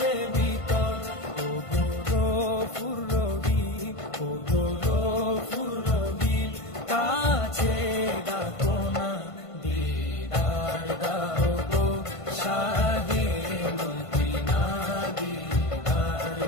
ভিতর। ও গো গফুর রহিম, ও গো গফুর রহিম, কাছে ডাকো না, দিদার দাও গো শাহে মদিনা, দিদার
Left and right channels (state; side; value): late; right; 1.5 ms